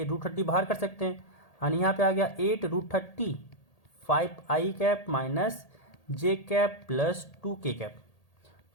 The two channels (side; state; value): right; late; 1.8 ms